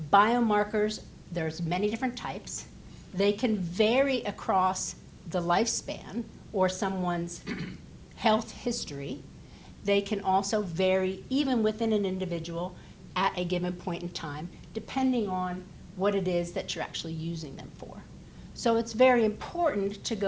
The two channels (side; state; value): both; identical; correlation 1.00